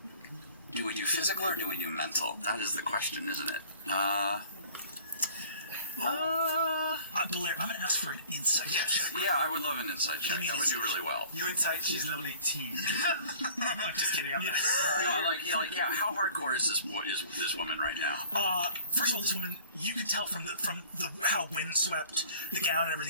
Do we do physical or do we do mental? That is the question, isn't it? Blair, I'm going to ask for an insight check. Yeah, I would love an insight check. That would do really well. You insight, she's level 18. I'm just kidding. Yeah. How hardcore is this woman right now? First of all, this woman, you can tell from how windswept the gown and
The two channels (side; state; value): both; inverted; correlation -0.50